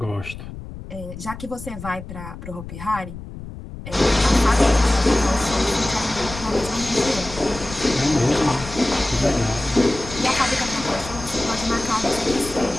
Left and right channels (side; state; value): left; noise; rumble, 12 dB below the sound